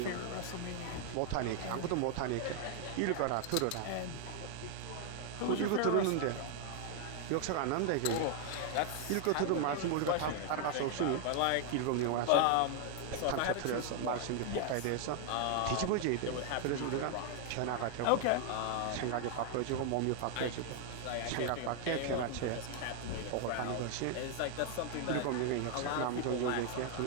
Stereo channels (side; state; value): both; different; correlation 0.00